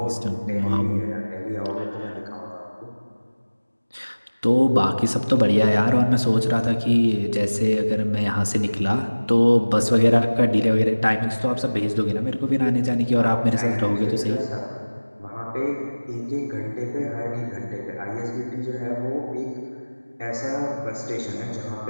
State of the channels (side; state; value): both; inverted; correlation -1.00